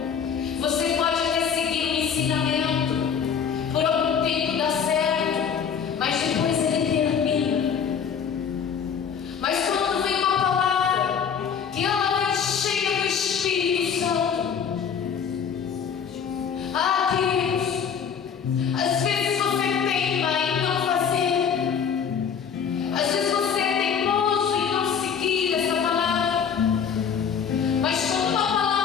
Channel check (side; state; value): right; quieter; 7.2 dB